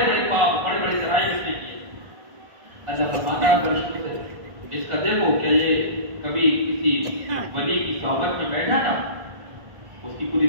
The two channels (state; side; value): late; left; 1.5 ms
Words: بڑے پاپ, بڑے بڑے جرائم اس نے کیے. اللہ فرماتا ہے فرشتے سے اس کا دیکھو کیا یہ کبھی کسی ولی کی صحبت میں بیٹھا تھا, اس کی پوری